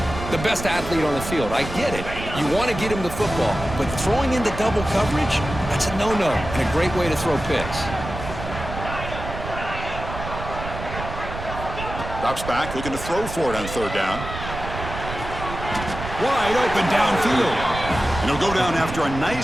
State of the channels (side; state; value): right; noise; rumble, 8 dB below the sound